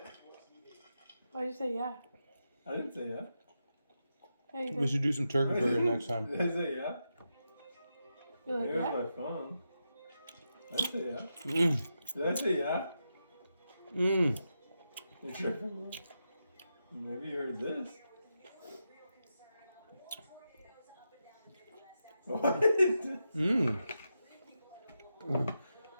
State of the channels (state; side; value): inverted; both; correlation -0.87